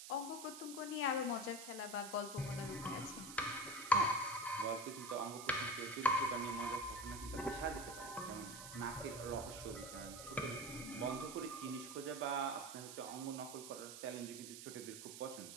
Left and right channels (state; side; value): noise; right; hiss, 10 dB below the sound